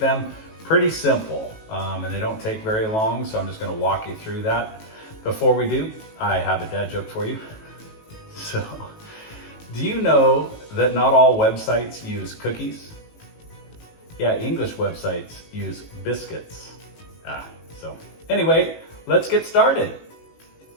them. Pretty simple, and they don't take very long, so I'm just going to walk you through that. Before we do, I have a dad joke for you. So, do you know that not all websites use cookies? Yeah, English websites use biscuits. So anyway, let's get started.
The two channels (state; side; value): late; right; 18 ms